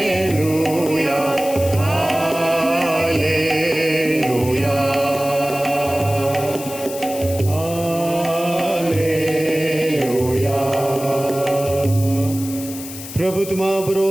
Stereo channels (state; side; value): noise; left; hiss, 12 dB below the sound